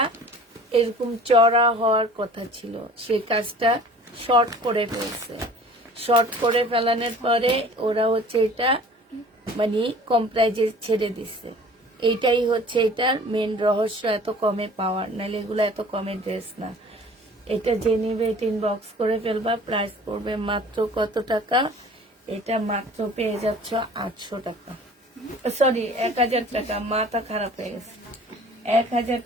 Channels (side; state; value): both; normal; correlation 0.47